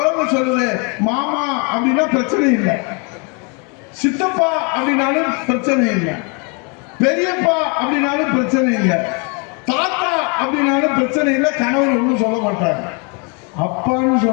சொல்லுது, மாமா அப்படின்னா பிரச்சனை இல்லை, சித்தப்பா அப்படின்னாலும் பிரச்சனை இல்லை, பெரியப்பா அப்படின்னாலும் பிரச்சனை இல்லை, தாத்தா அப்படின்னாலும் பிரச்சனை இல்லை. கணவன் ஒன்றும் சொல்ல மாட்டாங்க. அப்பான்னு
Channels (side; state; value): right; quieter; 34.2 dB